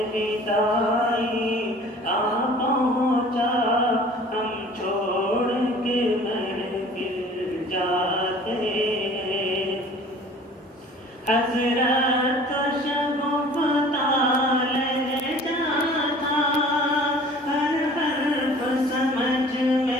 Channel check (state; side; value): normal; both; correlation 0.48